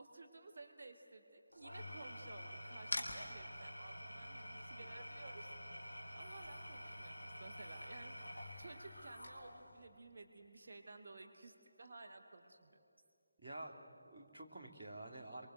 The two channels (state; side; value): inverted; both; correlation -0.94